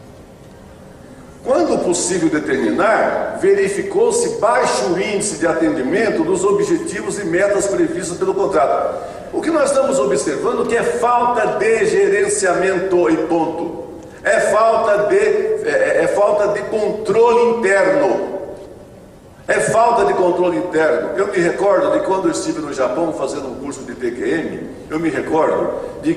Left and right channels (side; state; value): both; identical; correlation 1.00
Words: Quando possível determinar, verificou-se baixo índice de atendimento dos objetivos e metas previstos pelo contrato. O que nós estamos observando que é falta de gerenciamento e ponto. É falta de controle interno. É falta de controle interno. Eu me recordo de quando eu estive no Japão fazendo um curso de TQM, eu me recordo de